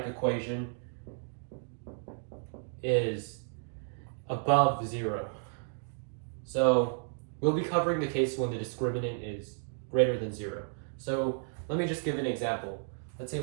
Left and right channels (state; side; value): silent; left; digital silence